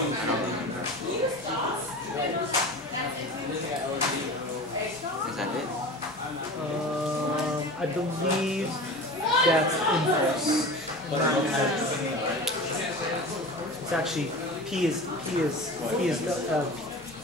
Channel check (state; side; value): normal; both; correlation 0.34